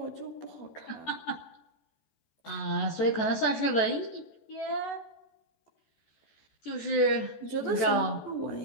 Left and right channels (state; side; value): late; right; 13 ms